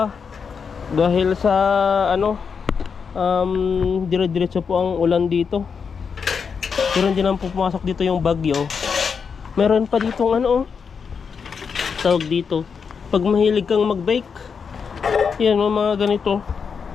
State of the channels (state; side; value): quieter; right; 6.0 dB